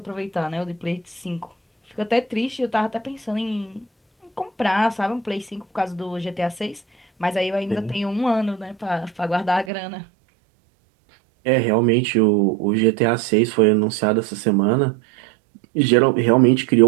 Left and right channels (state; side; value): drops out; left; at 9.7 s